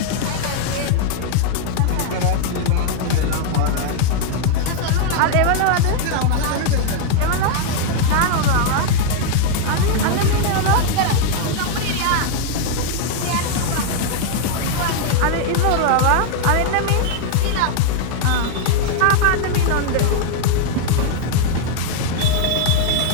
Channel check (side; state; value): both; different; correlation 0.00